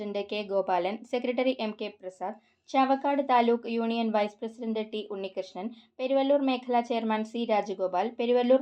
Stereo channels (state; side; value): identical; both; correlation 1.00